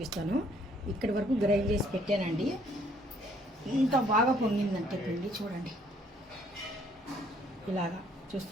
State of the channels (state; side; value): normal; both; correlation 0.64